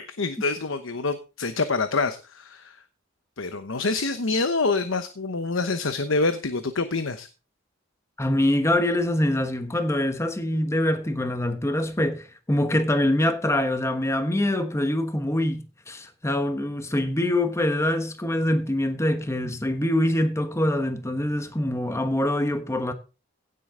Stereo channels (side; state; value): both; normal; correlation 0.60